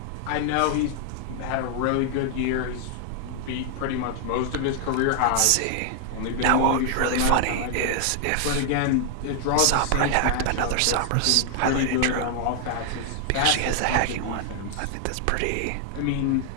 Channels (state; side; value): different; both; correlation 0.00